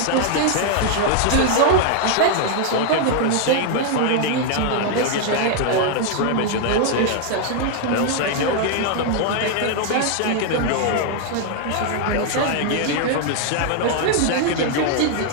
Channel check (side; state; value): both; different; correlation 0.00